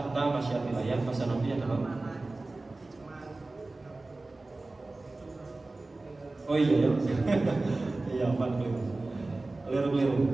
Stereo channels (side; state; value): left; quieter; 3.1 dB